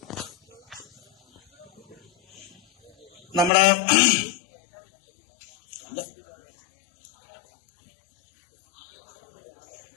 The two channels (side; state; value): right; drops out; at 3.5 s